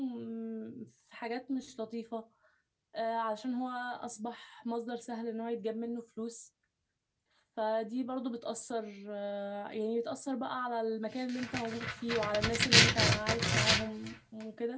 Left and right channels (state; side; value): identical; both; correlation 1.00